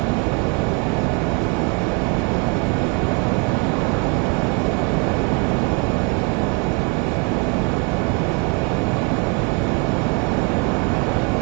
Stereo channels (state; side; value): quieter; left; 32.5 dB